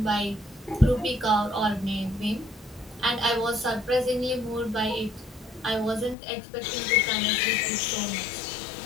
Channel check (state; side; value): drops out; right; at 6.2 s